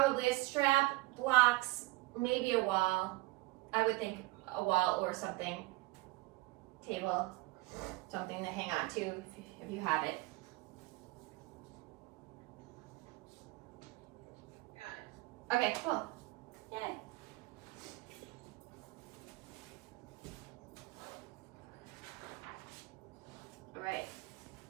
a strap, blocks, maybe a wall. I would think a wall or something, table, something to hang on to if you have it. Got it. Okay, cool. Yay. All right.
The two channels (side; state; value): left; quieter; 21.1 dB